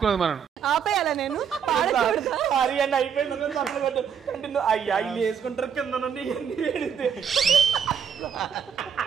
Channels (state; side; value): quieter; left; 7.5 dB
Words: మనం. ఆపేయాలా నేను అయిపోయింది. అయ్యా ఇల్లు వేసుకుంటారు కింద నుండి